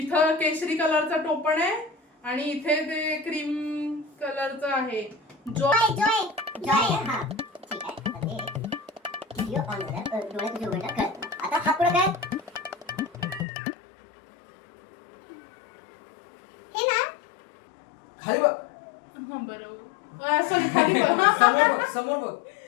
इथं केशरी कलरचं टोपण आहे आणि इथे ते क्रीम कलरचं आहे. जॉय. जॉय जॉय हा ठीक आहे. आता ते व्हिडिओ ऑन झाला. डोळे तुझे उघडला कळत. आता हा पुढे काय? हे ना. खाली बघ. हा बरोबर. सॉरी खाली बघ. समोर बघ. समोर बघ.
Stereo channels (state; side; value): drops out; right; at 13.5 s